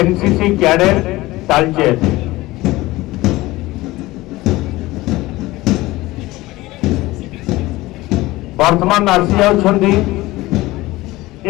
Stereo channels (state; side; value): quieter; right; 19.0 dB